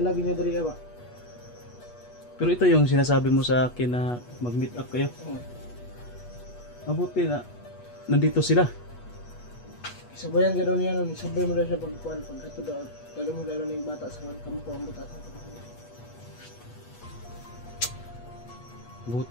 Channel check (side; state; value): right; late; 8.3 ms